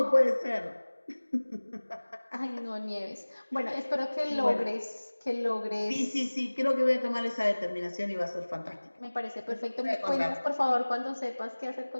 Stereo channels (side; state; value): both; inverted; correlation -1.00